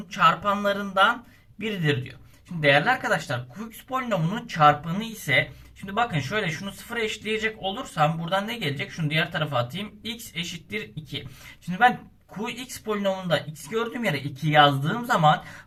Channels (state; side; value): identical; both; correlation 1.00